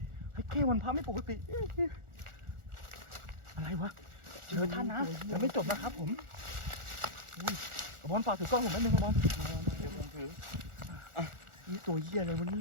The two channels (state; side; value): late; left; 1.4 ms